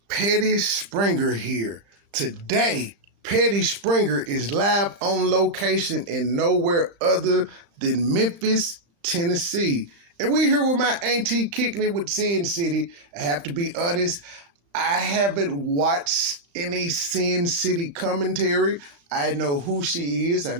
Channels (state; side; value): late; left; 35 ms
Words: Petty Springer here. Today, Petty Springer is live on location in nowhere other than Memphis, Tennessee. And we here with my auntie kicking it with Sin City. I have to be honest, I haven't watched any Sin City commentary. I know who she is. I